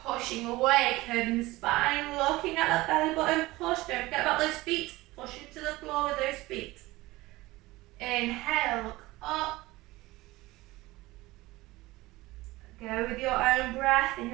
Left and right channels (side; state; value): left; quieter; 19.6 dB